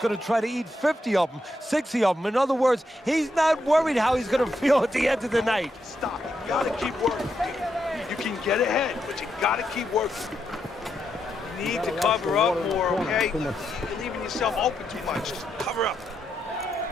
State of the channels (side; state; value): both; normal; correlation 0.81